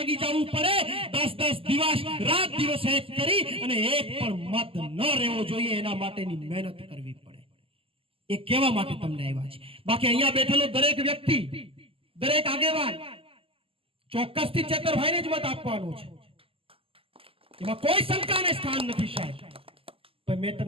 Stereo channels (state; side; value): late; left; 0.26 ms